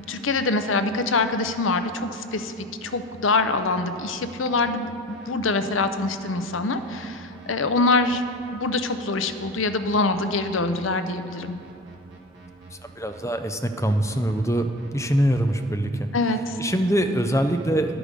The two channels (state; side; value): normal; both; correlation 0.33